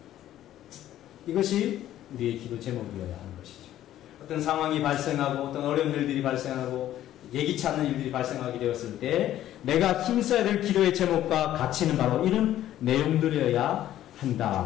이것이 우리의 기도 제목이어야 하는 것이죠. 어떤 상황이 발생하고 어떤 어려운 일들이 발생하고 예기치 않는 일들이 발생하게 되었을 때 내가 힘써야 될 기도의 제목과 가치는 바로 이런 내용들이어야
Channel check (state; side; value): quieter; right; 12.7 dB